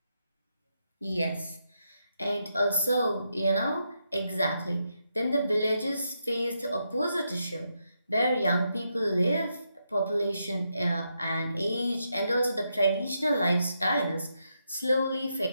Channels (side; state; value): both; inverted; correlation -0.82